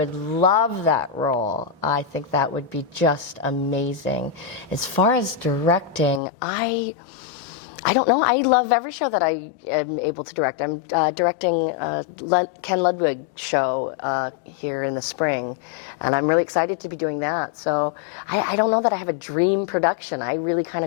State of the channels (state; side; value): drops out; right; at 6.2 s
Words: love that role. I think that would be just amazing. As far as directing, I don't know. I love every show that I am able to direct. I'm directing Ken Ludwig show here in the spring, and I'm really excited to be doing that. So I don't know that I have a dream production. I really kind